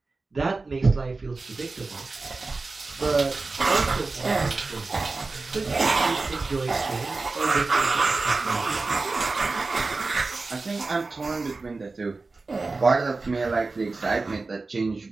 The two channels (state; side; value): quieter; left; 3.7 dB